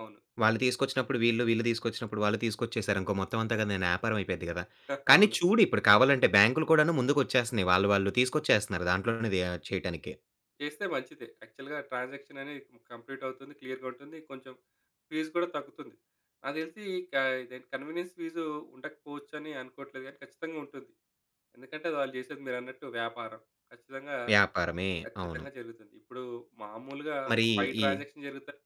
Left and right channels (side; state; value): both; identical; correlation 1.00